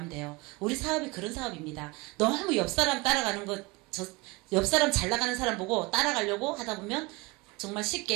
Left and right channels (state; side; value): quieter; left; 24.3 dB